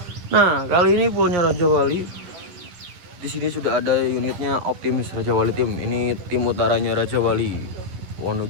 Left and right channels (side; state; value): left; late; 11 ms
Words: Nah, kali ini poolnya Raja Wali. Di sini sudah ada unitnya Optimis Raja Wali tim. Ini tim utaranya Raja Wali,